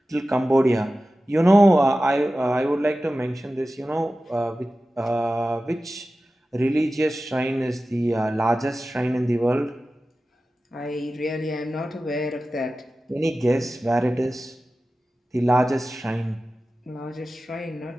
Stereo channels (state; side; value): normal; both; correlation 0.95